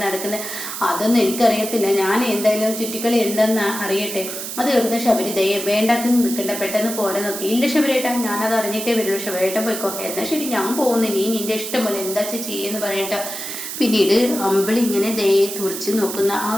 നടക്കുന്നത്? അതൊന്നും എനിക്കറിയത്തില്ല, ഞാൻ എന്തായാലും ചുറ്റിക്കളി എന്താണെന്ന് അറിയട്ടെ. അത് കേൾക്കുന്ന ശബരി ദയ വേണ്ടാത്ത നിൽക്കണ്ട, പെട്ടെന്ന് പോരാ നോക്കി. ഇല്ല ശബരിയേട്ടാ, ഞാനത് അറിഞ്ഞിട്ടേ വരുള്ളൂ, ശബരിയേട്ടൻ പോയിക്കോ. എന്നാൽ ശരി ഞാൻ പോകുന്നു, നീ നിന്റെ ഇഷ്ടം പോലെ എന്താ ചെയ്യുമെന്ന് പറയട്ടോ. പിന്നീട് അമ്പിളി ഇങ്ങനെ ദയെ തുറച്ച് നോക്കുന്ന ആ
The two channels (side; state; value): right; noise; hiss, 7 dB below the sound